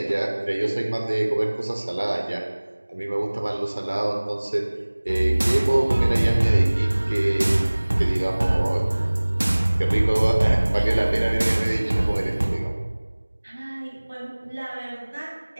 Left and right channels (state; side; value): inverted; both; correlation -1.00